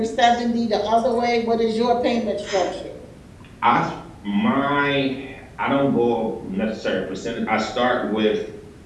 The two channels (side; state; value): both; identical; correlation 1.00